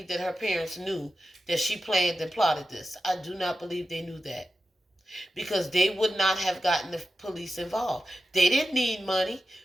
that her parents knew that she planned and plotted this. I do not believe they knew that. Because they would not have gotten the police involved. They didn't need money.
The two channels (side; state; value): both; normal; correlation 0.92